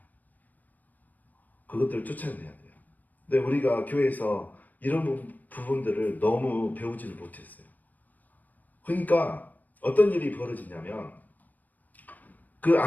그것들 쫓아내야 돼요. 근데 우리가 교회에서 이런 부분들을 너무 배우지를 못했어요. 그러니까 어떤 일이 벌어지냐면, 그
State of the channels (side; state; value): right; late; 0.083 ms